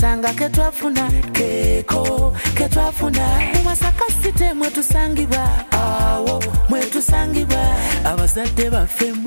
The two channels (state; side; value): inverted; both; correlation -1.00